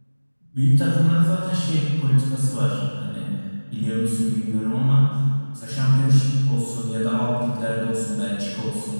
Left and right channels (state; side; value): inverted; both; correlation -1.00